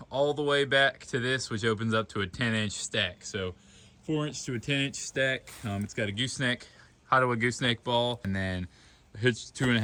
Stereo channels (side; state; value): both; identical; correlation 1.00